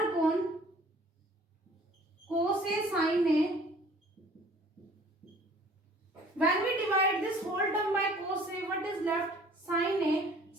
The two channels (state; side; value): normal; both; correlation 0.52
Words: upon cos A sin A. When we divide this whole term by cos A, what is left? Sin A.